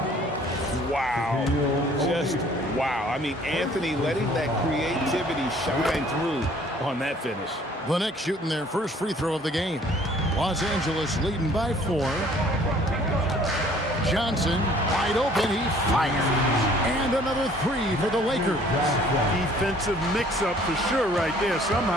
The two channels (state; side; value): normal; both; correlation 0.56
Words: Wow. Just wow. I mean, Anthony letting that creativity shine through on that finish. the Knicks shooting their first free throw of the game. Los Angeles leading by 4. Johnson wide open. He fires. And another 3 for the Lakers. Defensive mix-up for sure right there.